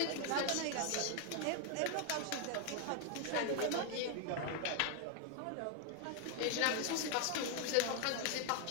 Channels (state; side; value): different; both; correlation 0.00